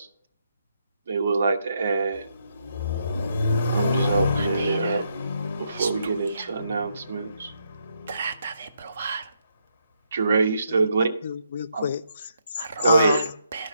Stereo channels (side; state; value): both; inverted; correlation -0.77